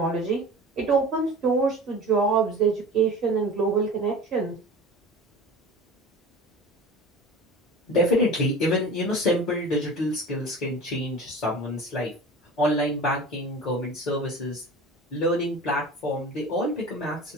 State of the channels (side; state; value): both; normal; correlation 0.37